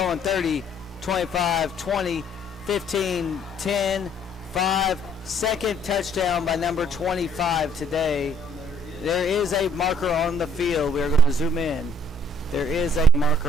30, 25, 20, 15, 10, 5. Second touchdown by number 25 today. There is a marker on the field. We're going to zoom in. There is a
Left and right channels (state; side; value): normal; both; correlation 0.61